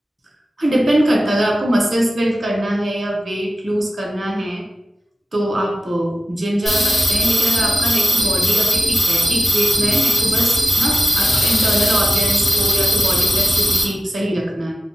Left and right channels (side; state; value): both; normal; correlation 0.94